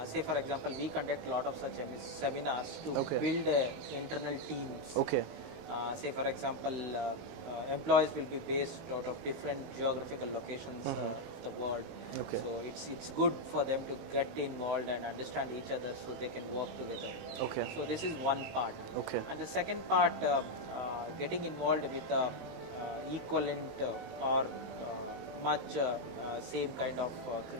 Say for example, we conduct a lot of such seminars to Okay. build internal teams. Okay. Say for example, employees will be based out of different geographical locations of the world. Okay. So it's good for them to get involved and understand each other so they can work together. Okay. So this is one part. Okay. And the second part, getting involved with equivalent or much same kind of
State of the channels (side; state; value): left; late; 19 ms